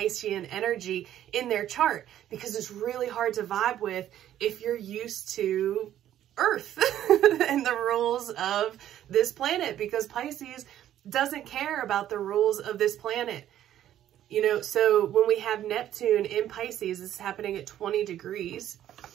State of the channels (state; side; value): quieter; left; 11.8 dB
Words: energy in their chart, because it's really hard to vibe with if you're used to Earth and the rules of this planet, because Pisces doesn't care about the rules of this planet. You know, so when we have Neptune in Pisces, it's happening at 20 degrees,